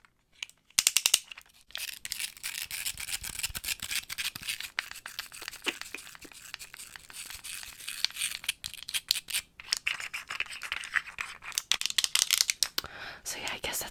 so yeah, I guess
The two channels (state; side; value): identical; both; correlation 1.00